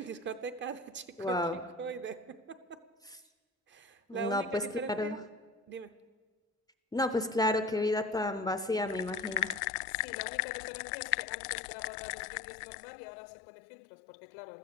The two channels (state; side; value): drops out; right; at 9.6 s